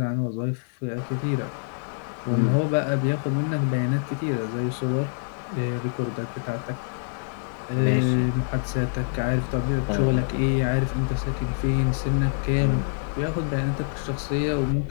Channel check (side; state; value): right; silent; 61 dB below the other